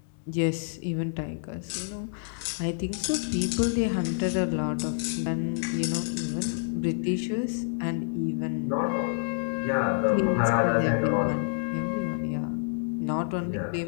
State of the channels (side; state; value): right; silent; digital silence